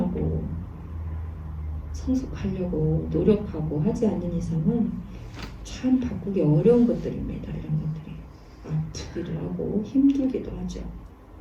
성숙하려고 노력하고 하지 않는 이상은 참 바꾸기 어려운 것들입니다. 이런 것들이 아프기도 하고 힘들기도 하죠.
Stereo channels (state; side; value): identical; both; correlation 1.00